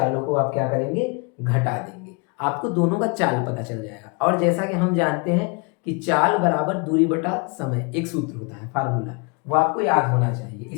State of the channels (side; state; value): right; quieter; 32.4 dB